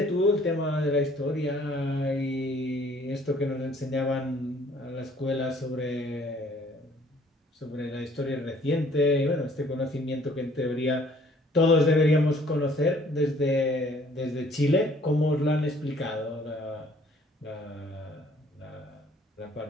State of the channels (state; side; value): normal; both; correlation 0.58